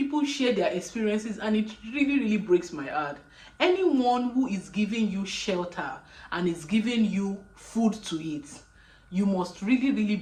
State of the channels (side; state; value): both; identical; correlation 1.00